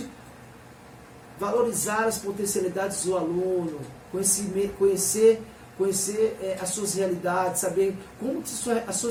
valorizar as potencialidades do aluno, conhecer as suas realidades, saber como as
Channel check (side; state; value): both; identical; correlation 1.00